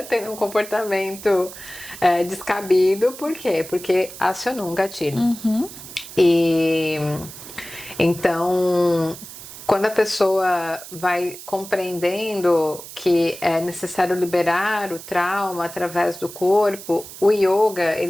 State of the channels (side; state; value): right; noise; hiss, 14 dB below the sound